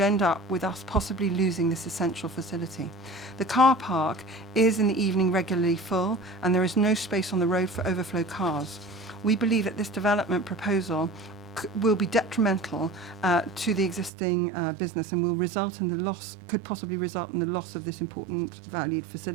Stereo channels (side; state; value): left; drops out; at 14.1 s